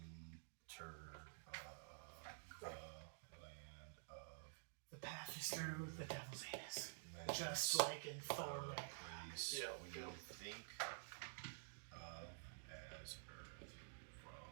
of the land of The path is through the devil's anus. menace. Just like in Thor. The Right? place Yeah, we go. think of as Earth.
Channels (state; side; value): silent; left; digital silence